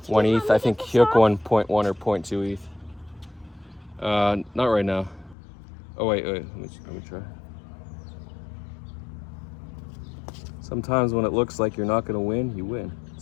ETH. I think Hyuk won 0.1 or 0.2 ETH. Not right now. Oh wait, let me try. Sometimes when it looks like you're not gonna win, you win.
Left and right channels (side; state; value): right; drops out; at 5.4 s